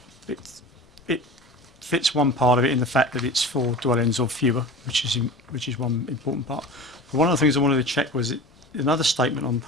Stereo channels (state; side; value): normal; both; correlation 0.35